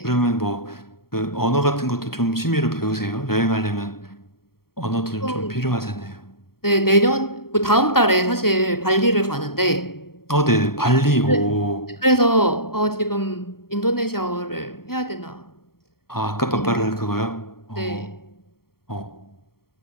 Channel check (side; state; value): right; late; 0.94 ms